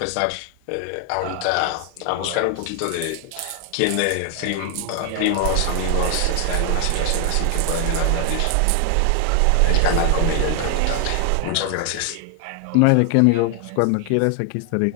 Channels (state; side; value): different; both; correlation 0.00